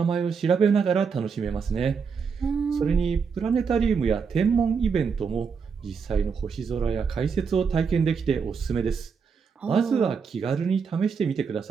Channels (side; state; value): left; quieter; 5.8 dB